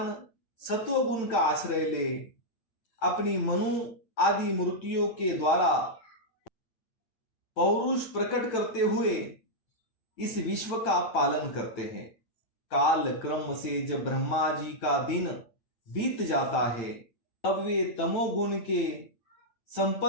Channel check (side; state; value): right; late; 8.9 ms